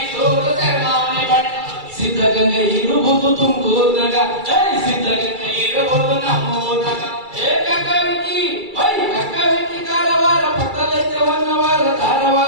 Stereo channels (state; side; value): late; left; 2.3 ms